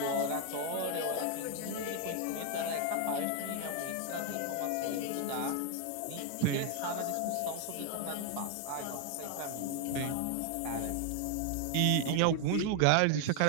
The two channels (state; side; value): different; both; correlation 0.00